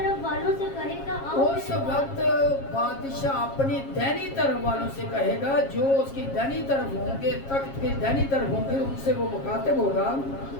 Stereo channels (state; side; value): late; right; 7.4 ms